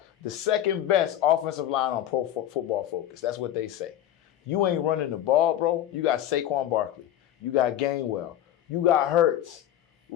the second best offensive line on Pro Football Focus. That's what they say. You ain't running the ball, bro. You got Saquon Barkley. You got Gainwell. You got Hurts.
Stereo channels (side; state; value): right; quieter; 11.6 dB